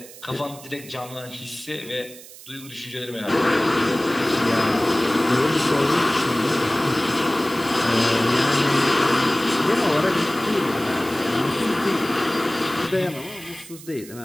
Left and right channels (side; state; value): right; noise; hiss, 18 dB below the sound